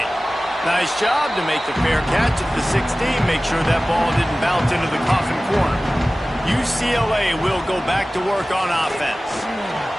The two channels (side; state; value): both; normal; correlation 0.97